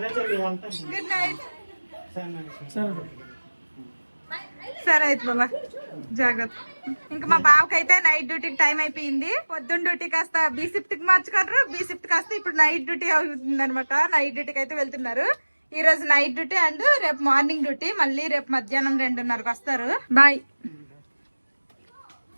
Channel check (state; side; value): inverted; both; correlation -1.00